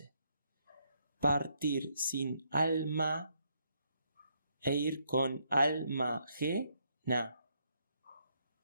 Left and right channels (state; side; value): inverted; both; correlation -0.74